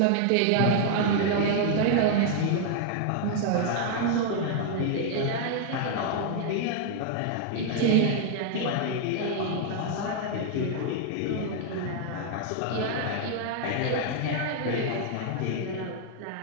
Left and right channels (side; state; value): both; different; correlation -0.01